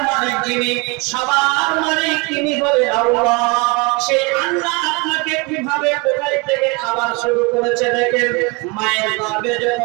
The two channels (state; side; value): quieter; left; 27.8 dB